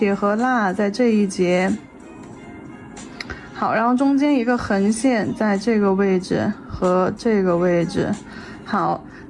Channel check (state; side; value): identical; both; correlation 1.00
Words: 和捺在这一节。好，然后中间一个横线在这个位置和这个位置。好，